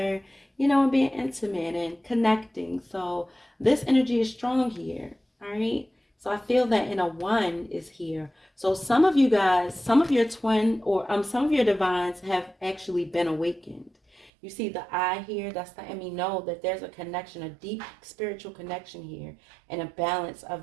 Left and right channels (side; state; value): left; drops out; at 14.3 s